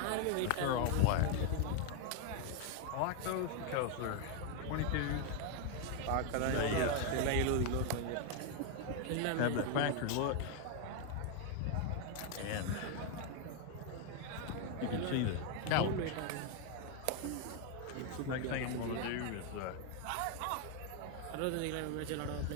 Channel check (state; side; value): different; both; correlation 0.01